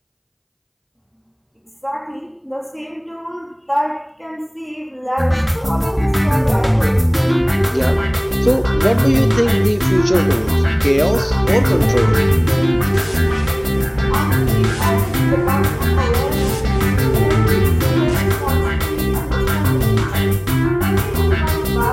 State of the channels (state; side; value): identical; both; correlation 1.00